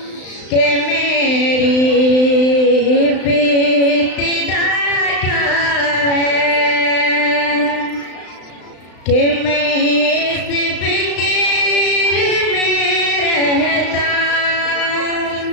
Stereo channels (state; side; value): late; right; 35 ms